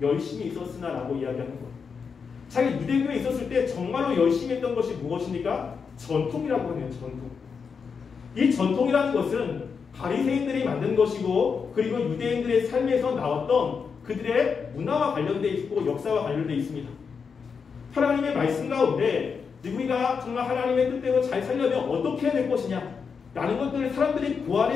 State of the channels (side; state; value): right; quieter; 5.8 dB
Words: 있었으나 라고 이야기하는 거예요. 자기 유대교에 있었을 때 정말로 열심히 했던 것이 무엇입니까? 전통이라고 하네요. 전통. 이 전통이라는 것은 바리새인들이 만든 것이고 그리고 유대인들의 삶에서 나왔던 그들의 문화와 관련되어 있고 역사와 관련되어 있습니다. 하나님의 말씀 가운데 우리가 정말 하나님의 뜻대로 잘 살려면 어떻게 해야 될 것이냐 라는 것들을 사람들이